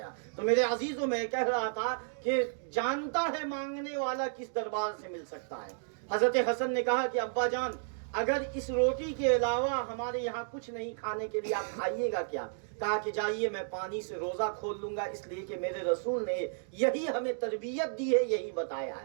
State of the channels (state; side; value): silent; left; digital silence